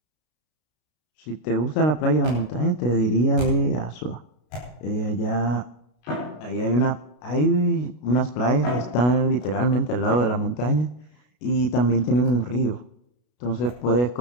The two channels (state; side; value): late; right; 33 ms